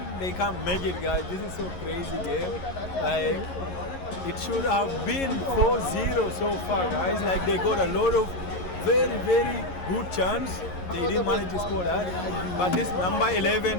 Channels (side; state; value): right; late; 11 ms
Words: they can't make it, guys. This is so crazy game. Like, it should have been 4-0 so far, guys. Like, they got a lot of very, very good chance. They didn't manage to score that. But this number